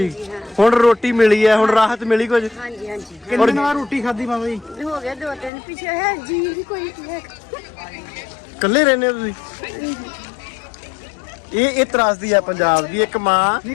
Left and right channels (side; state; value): right; drops out; at 5.5 s